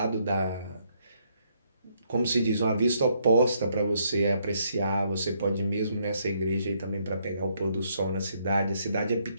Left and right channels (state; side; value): inverted; both; correlation -0.72